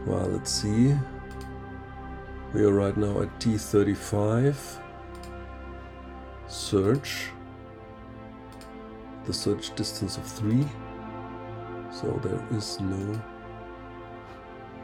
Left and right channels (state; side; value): identical; both; correlation 1.00